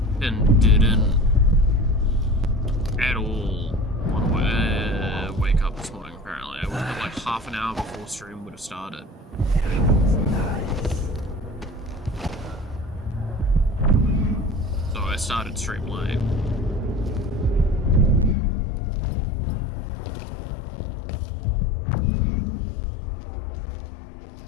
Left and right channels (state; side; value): drops out; right; at 18.4 s